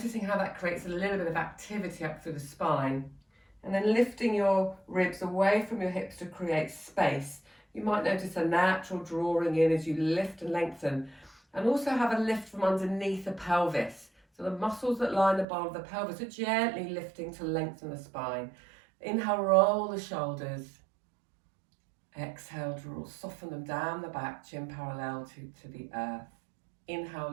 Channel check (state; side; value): drops out; left; at 15.5 s